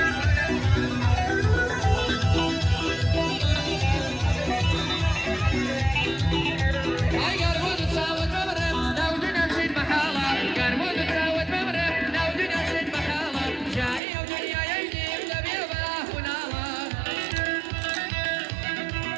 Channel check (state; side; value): drops out; left; at 14.0 s